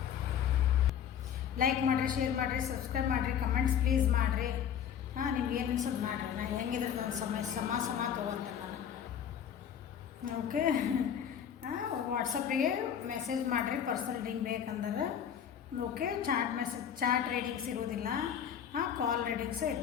ಲೈಕ್ ಮಾಡಿರಿ, ಶೇರ್ ಮಾಡಿರಿ, ಸಬ್ಸ್ಕ್ರೈಬ್ ಮಾಡಿರಿ, ಕಮೆಂಟ್ಸ್ ಪ್ಲೀಸ್ ಮಾಡಿರಿ. ನಿಮ್ಗೆ ಏನು ಅನ್ಸೋದು ಮಾಡಿರಿ. ನಾನು ಹೆಂಗಿದ್ರೆ ನನ್ನ ಸಮ ತೊಗೊಳ್ತೇನೆ ನಾನು. ಓಕೆ, ವಾಟ್ಸಪ್ಪಿಗೆ ಮೆಸೇಜ್ ಮಾಡಿರಿ ಪರ್ಸನಲ್ ರೀಡಿಂಗ್ ಬೇಕಂದ್ರೆ. ಓಕೆ, ಚಾಟ್ ರೀಡಿಂಗ್ಸ್ ಇರೋದಿಲ್ಲ, ಕಾಲ್ ರೀಡಿಂಗ್ಸೇ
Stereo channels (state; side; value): quieter; right; 8.8 dB